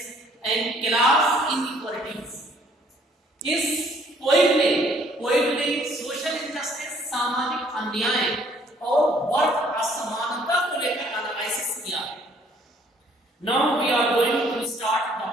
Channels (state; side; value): normal; both; correlation 0.61